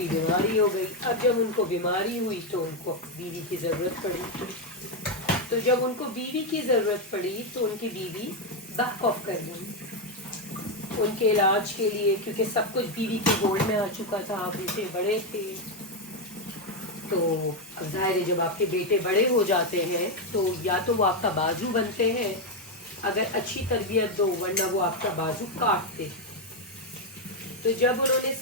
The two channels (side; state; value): both; normal; correlation 0.05